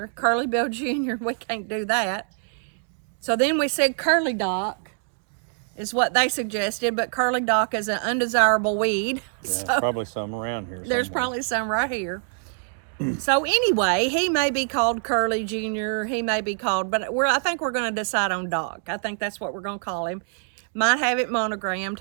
Curly Bill Junior. We can't do that. So then we said Curly Doc is what they suggested, but Curly Doc is an undesirable weed. Yeah, So probably some around here. there's somewhere. probably some right here. So anyway, he may be called Curly Junior. He may be called, but I think we're going to decide on Doc. I think that's what we're going to call him. Might have it monogrammed.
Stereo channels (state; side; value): silent; left; 62 dB below the other